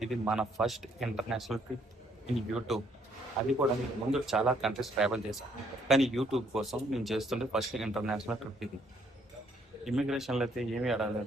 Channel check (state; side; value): normal; both; correlation 0.67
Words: ఇది మన first international trip in YouTube. అది కూడా నేను ముందు చాలా కంట్రీస్ ట్రావెల్ చేశాను, కానీ యూట్యూబ్ కోసం నేను చేస్తుంటే ఫస్ట్ ఇంటర్నేషనల్ ట్రిప్ ఇది. ఇమిగ్రేషన్లో అయితే ఏమీ